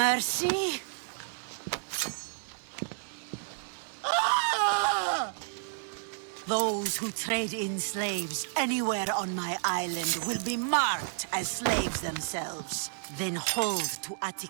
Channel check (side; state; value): left; silent; digital silence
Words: Ah! Those who trade in slaves anywhere on my island will be marked as slaves themselves, then hauled to